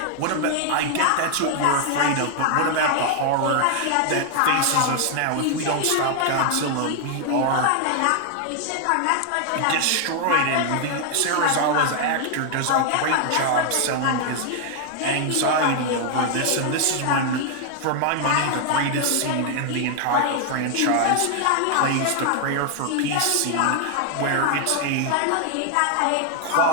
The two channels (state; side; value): different; both; correlation 0.00